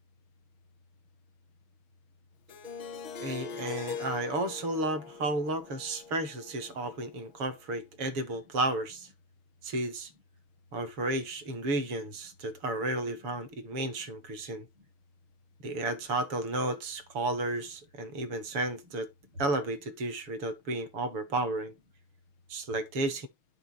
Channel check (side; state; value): left; late; 6.4 ms